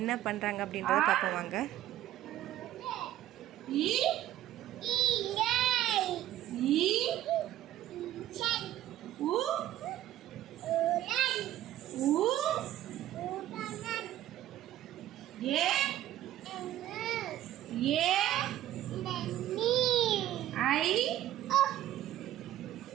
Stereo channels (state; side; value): quieter; left; 13.2 dB